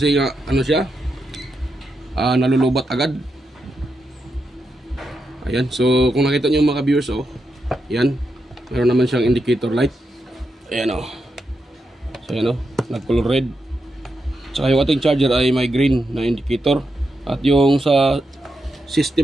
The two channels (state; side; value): normal; both; correlation 0.85